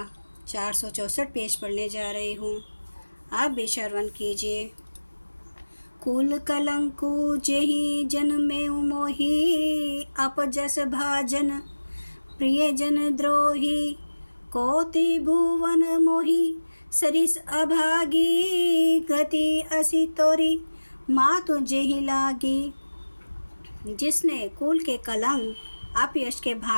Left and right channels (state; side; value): inverted; both; correlation -1.00